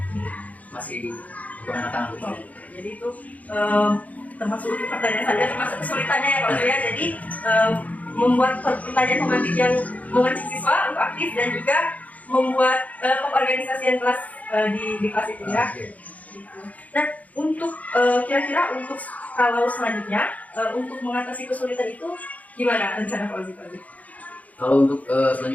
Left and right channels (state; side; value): late; right; 0.073 ms